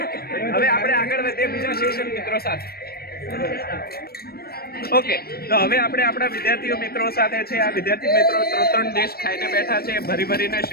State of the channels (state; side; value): late; right; 0.45 ms